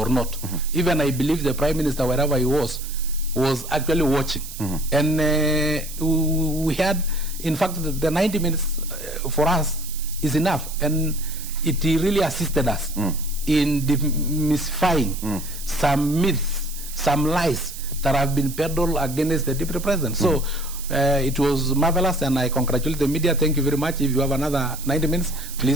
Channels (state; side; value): noise; right; hiss, 12 dB below the sound